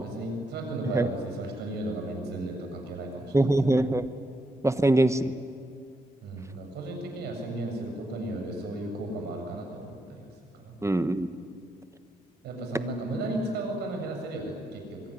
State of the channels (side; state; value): both; normal; correlation 0.80